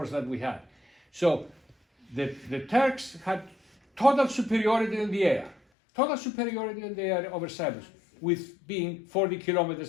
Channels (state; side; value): drops out; right; at 5.6 s